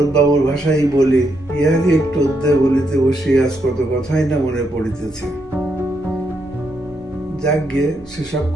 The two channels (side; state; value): both; normal; correlation 0.79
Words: বাবুর ভাষাই বলি, ইহাকে একটু অধ্যায় বলিতে বসি, আজ কত কথাই না মনে পড়িতেছে। যাকে সেসব